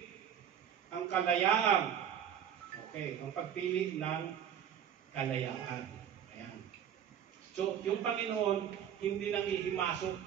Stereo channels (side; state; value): left; quieter; 9.2 dB